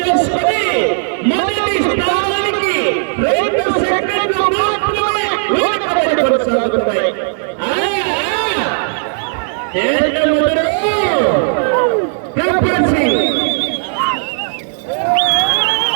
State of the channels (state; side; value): silent; left; digital silence